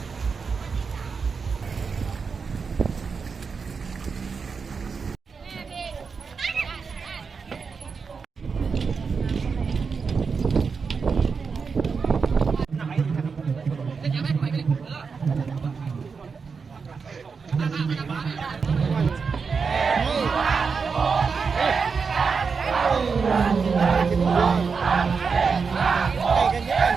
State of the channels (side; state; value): left; quieter; 5.3 dB